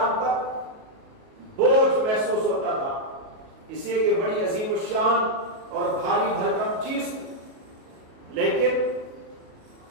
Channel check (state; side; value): late; left; 37 ms